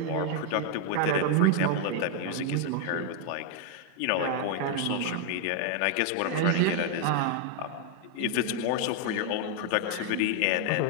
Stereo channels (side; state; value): both; different; correlation 0.00